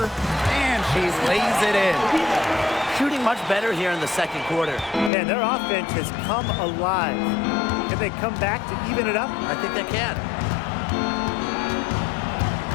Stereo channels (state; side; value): drops out; right; at 5.1 s